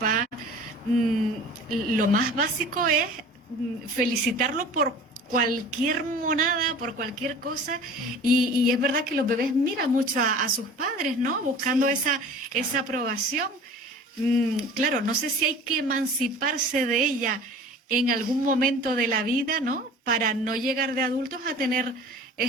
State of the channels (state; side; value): normal; both; correlation 0.42